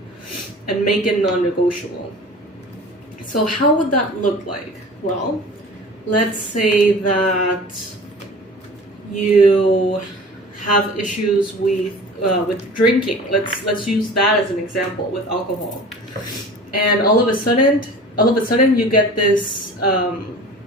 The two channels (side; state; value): both; normal; correlation 0.41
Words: and make it non-negotiable. So how would that look like? Well, let's say that you have issues with drinking. Let's use that as an example with alcohol. And all of a sudden you get this